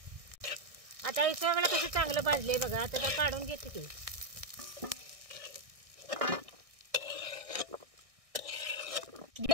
आता हे सगळं कसं चांगलं भाजले बघा. आता काढून घेते ते.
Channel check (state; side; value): late; left; 1.6 ms